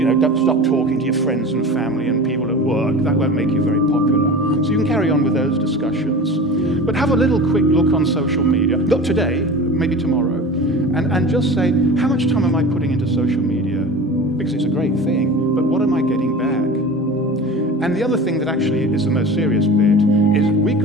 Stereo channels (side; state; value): both; normal; correlation 0.34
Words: don't stop talking to your friends and family and people at work. That won't make you very popular. So you can carry on with those discussions. But have a little quick look on social media. Not today, maybe tomorrow. And just say, how much time am I putting into social media? Because it's a great thing, but what am I getting back? And the other thing that actually is the most serious bit is we've